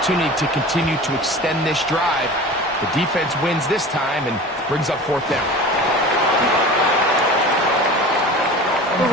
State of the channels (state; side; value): normal; both; correlation 0.37